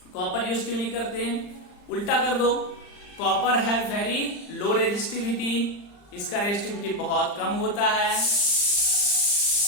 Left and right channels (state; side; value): late; right; 39 ms